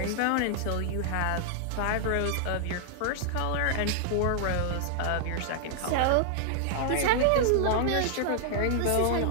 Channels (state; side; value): different; both; correlation -0.01